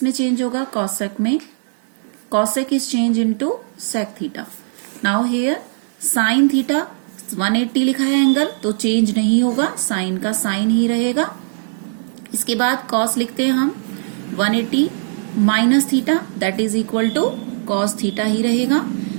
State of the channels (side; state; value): left; silent; digital silence